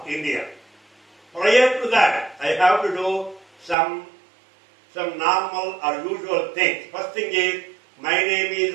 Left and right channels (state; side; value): drops out; left; at 3.8 s